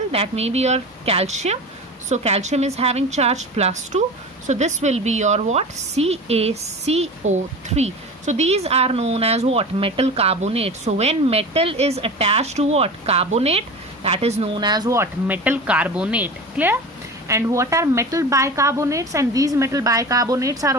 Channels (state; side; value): normal; both; correlation 0.32